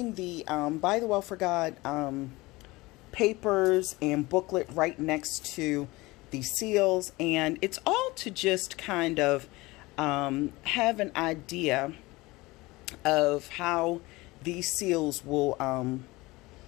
the ByTheWell4God papers and booklet right next to the seals, and it's all to just kind of have an idea of how these seals will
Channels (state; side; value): quieter; right; 21.4 dB